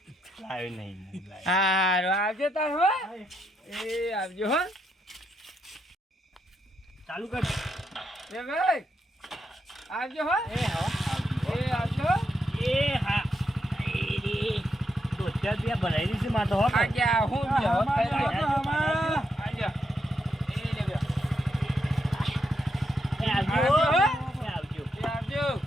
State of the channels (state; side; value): normal; both; correlation 0.80